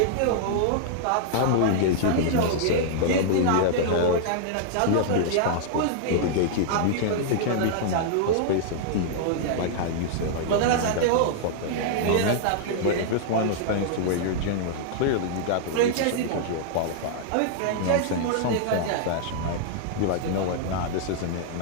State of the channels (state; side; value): different; both; correlation -0.01